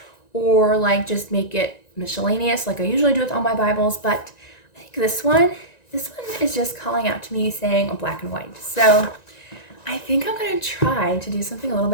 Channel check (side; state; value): right; late; 1.9 ms